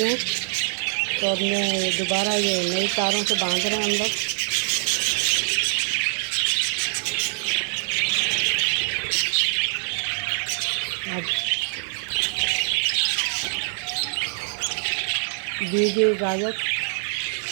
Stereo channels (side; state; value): left; silent; 58 dB below the other